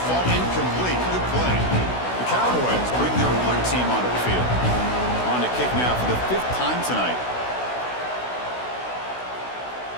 fall incomplete. Good play. The Cowboys bring their punt team onto the field. On to kick now for the 5th time tonight.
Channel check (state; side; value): late; right; 16 ms